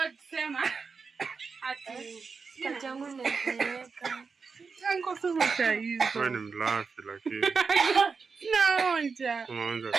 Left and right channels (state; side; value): quieter; left; 5.0 dB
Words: sema. Ati kachangu nimeweka. Yango sema hizo. Wewe ni mlafi lakini. Naonja. Unaonja